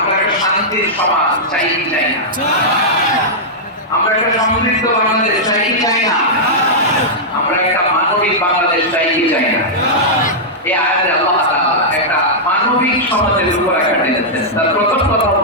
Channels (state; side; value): normal; both; correlation -0.09